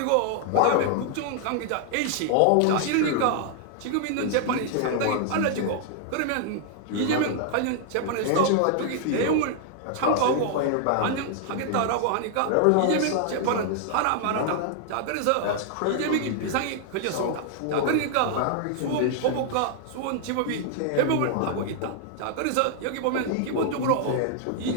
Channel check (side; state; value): both; different; correlation 0.00